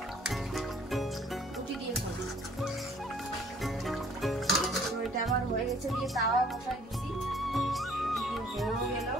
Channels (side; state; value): both; normal; correlation 0.58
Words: রুটি দিয়ে খাবো। তো এটা আমার হয়ে গেছে, দিয়ে তাওয়া বসাই দিছি, হয়েও গেল।